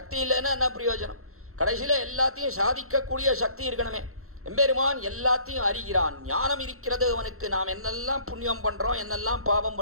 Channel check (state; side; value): late; left; 0.63 ms